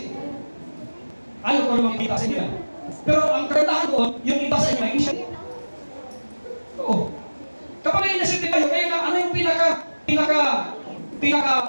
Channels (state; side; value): inverted; both; correlation -1.00